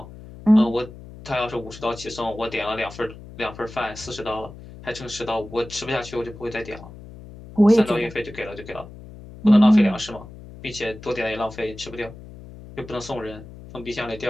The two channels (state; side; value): noise; left; hum, 16 dB below the sound